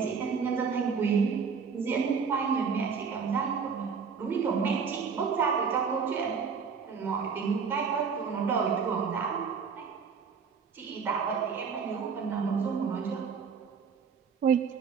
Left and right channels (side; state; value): left; quieter; 5.9 dB